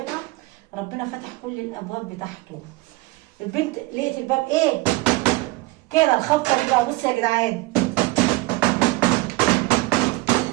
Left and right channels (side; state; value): left; quieter; 21.2 dB